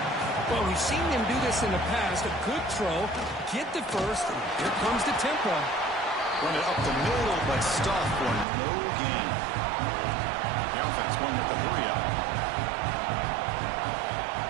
Well, we've seen them do this in the past. A good throw, get the first, and here comes the tempo. Run it up the middle, but stuffed for no gain. The offense going with the hurry-up.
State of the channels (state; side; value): drops out; left; at 8.5 s